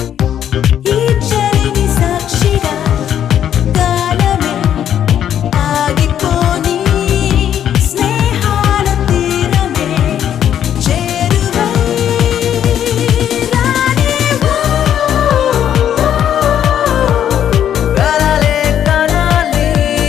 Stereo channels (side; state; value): right; quieter; 10.0 dB